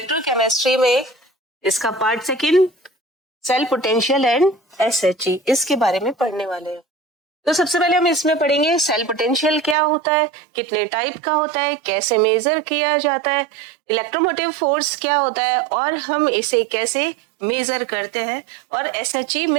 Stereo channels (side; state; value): left; drops out; at 9.8 s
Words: में इसका part second cell potential and SHE, इसके बारे में पढ़ने वाले हैं। तो सबसे पहले हम इसमें पढ़ेंगे सेल पोटेंशियल क्या होता है, कितने टाइप का होता है, कैसे मेजर किया जाता है, इलेक्ट्रोमोटिव फोर्स क्या होता है और हम इसे कैसे मेजर करते हैं, और SHE